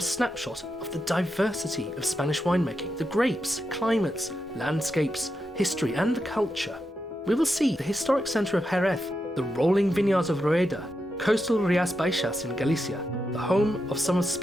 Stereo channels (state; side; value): normal; both; correlation 0.86